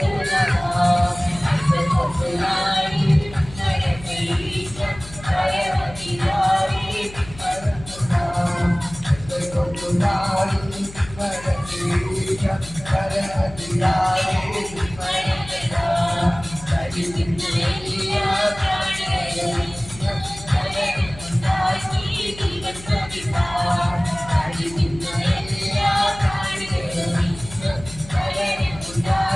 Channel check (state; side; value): noise; left; hum, 16 dB below the sound